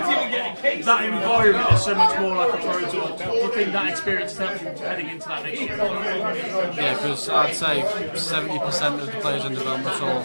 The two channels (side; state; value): both; inverted; correlation -1.00